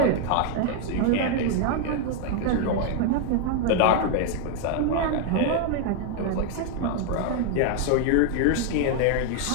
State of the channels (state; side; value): different; both; correlation 0.00